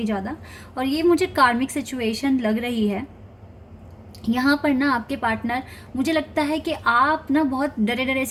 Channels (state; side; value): identical; both; correlation 1.00